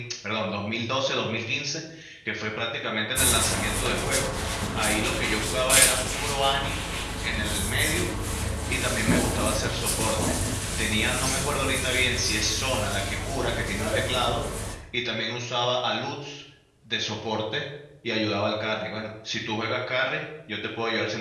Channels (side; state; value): both; identical; correlation 1.00